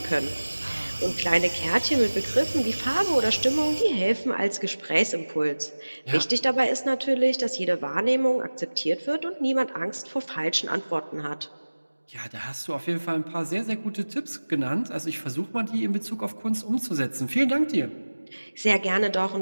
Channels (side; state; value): both; inverted; correlation -1.00